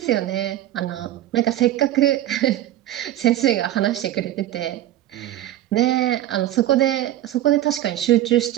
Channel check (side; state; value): left; quieter; 13.3 dB